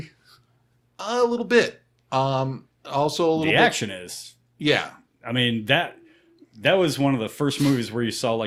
A little bit. Also a little The bit. action is. Yeah. I mean, that was one of the first movies where you saw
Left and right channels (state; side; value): identical; both; correlation 1.00